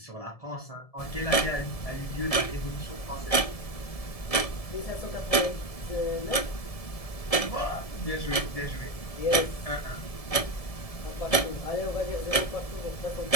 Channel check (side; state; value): right; late; 1.7 ms